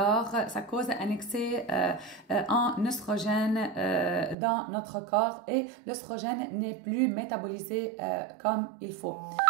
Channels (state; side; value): drops out; left; at 4.4 s